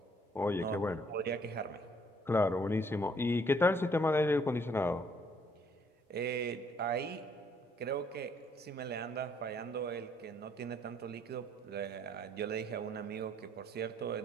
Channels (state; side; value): normal; both; correlation 0.65